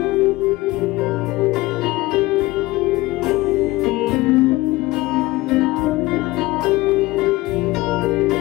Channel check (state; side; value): quieter; right; 19.4 dB